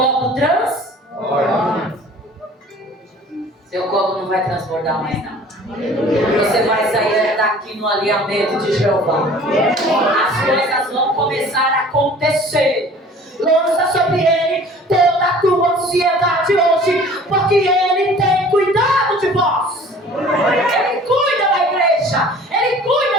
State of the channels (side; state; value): both; normal; correlation 0.48